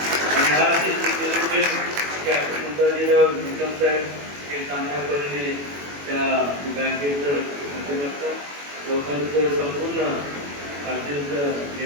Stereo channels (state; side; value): late; left; 21 ms